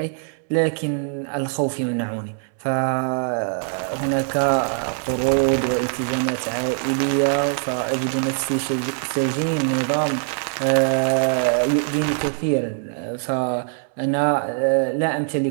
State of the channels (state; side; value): silent; left; 64 dB below the other